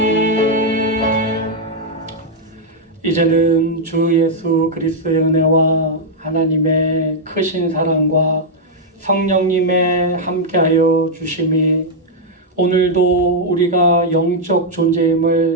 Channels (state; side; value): normal; both; correlation -0.03